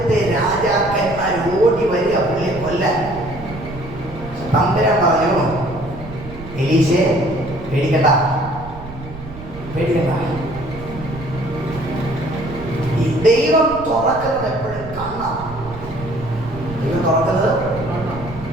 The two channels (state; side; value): noise; right; rumble, 14 dB below the sound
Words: രാജാക്കന്മാർ ഓടി വരിക പുള്ളിയെ കൊല്ലാൻ. തമ്പുരാൻ പറഞ്ഞു, എലീശയെ പേടിക്കണ്ട, പേടിക്കണ്ട. ഈ ദൈവം തുറക്കുന്നത് എപ്പോഴും കണ്ണാണ്. ദൈവം തുറക്കുന്നത്